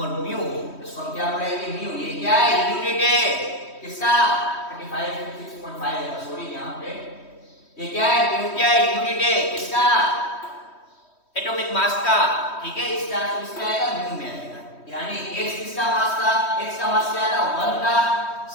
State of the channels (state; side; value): late; right; 3.1 ms